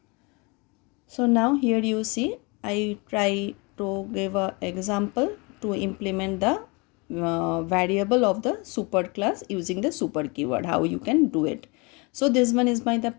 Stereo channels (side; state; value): right; quieter; 28.8 dB